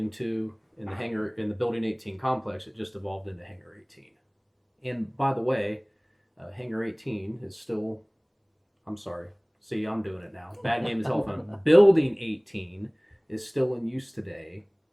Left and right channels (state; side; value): identical; both; correlation 1.00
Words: 2 in the Building 18 complex, it just evolved into Hangar 18. And by the way, Hangar 18 is still, I'm sorry, see, I'm doing it now. Bad game of telephone. Building 18 is still in use today,